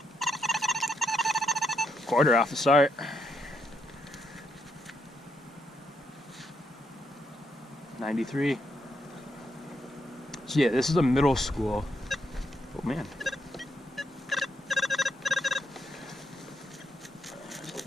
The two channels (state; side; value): normal; both; correlation 0.78